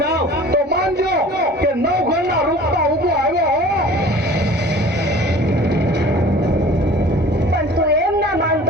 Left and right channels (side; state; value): both; normal; correlation 0.45